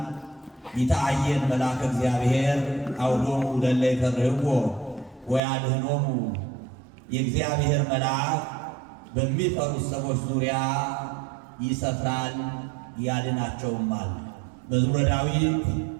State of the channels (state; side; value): drops out; left; at 5.4 s